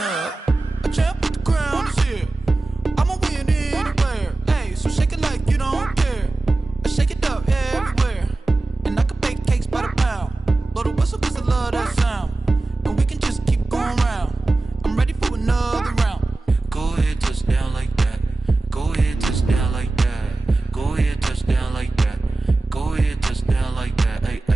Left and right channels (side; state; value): left; quieter; 3.1 dB